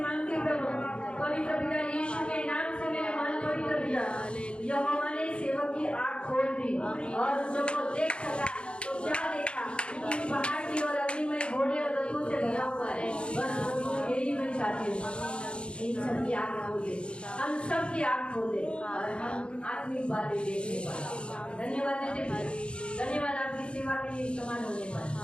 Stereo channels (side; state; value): right; late; 0.057 ms